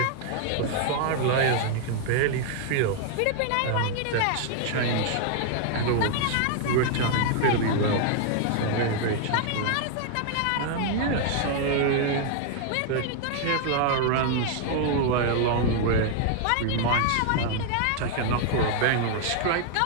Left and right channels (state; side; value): different; both; correlation 0.00